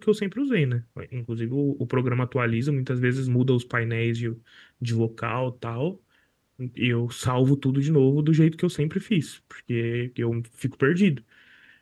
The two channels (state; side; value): identical; both; correlation 1.00